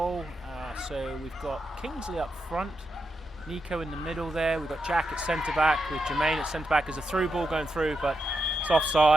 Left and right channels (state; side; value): normal; both; correlation 0.85